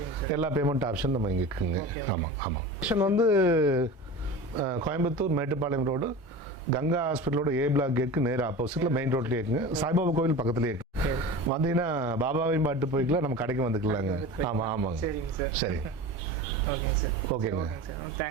எல்லா பேமெண்ட் ஆப்ஷன் நம்ம இங்கே இருக்குங்க. ஆமாம் ஆமாம். ஆப்ஷன் வந்து கோயம்புத்தூர் மேட்டுப்பாளையம் ரோடு, கங்கா ஹாஸ்பிட்டலோட ஏ பிளாக் கேட்க்கு நேராக ஆப்போசிட்டில் மெயின் ரோட்லேயே இருக்குங்க. சாய்பாபா கோவில் பக்கத்துலேயே இருக்கு. வந்தீங்கன்னா பாபாவையும் பாட்டு போய்க்கலாம், நம்ம கடைக்கு வந்துக்கலாங்க. ஆமாம் ஆமாங்க. சரிங்க சார். சரி, ஓகேங்க சார். ஓகேங்க.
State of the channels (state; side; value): normal; both; correlation 0.33